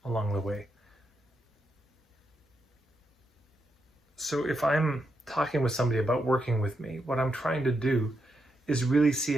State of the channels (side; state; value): both; normal; correlation 0.83